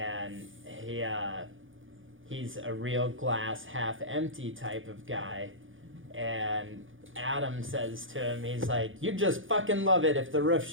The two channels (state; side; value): late; left; 0.58 ms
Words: he's a real glass half empty type of guy. And Adam says to him, he's like, you'd just fucking love it if the roof